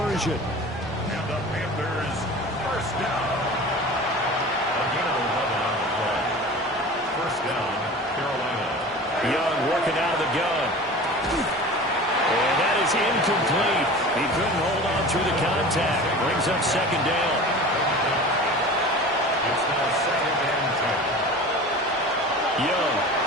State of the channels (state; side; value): normal; both; correlation 0.37